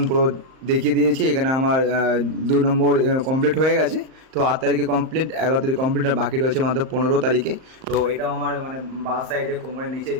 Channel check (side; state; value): left; late; 38 ms